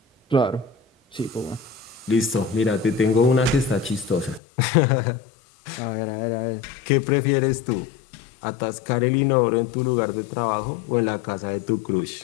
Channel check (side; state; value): right; drops out; at 4.4 s